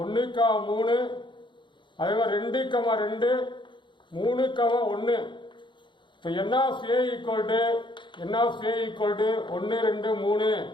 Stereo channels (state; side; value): late; right; 0.23 ms